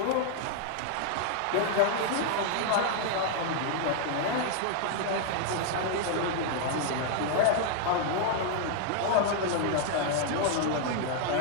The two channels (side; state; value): both; different; correlation 0.00